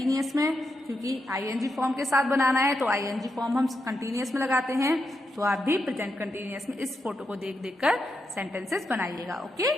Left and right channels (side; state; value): both; normal; correlation 0.85